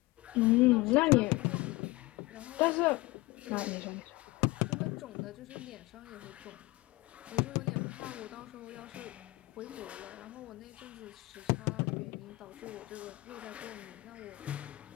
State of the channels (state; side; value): quieter; right; 20.8 dB